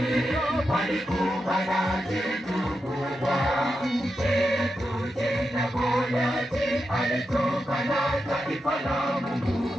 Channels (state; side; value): normal; both; correlation 0.87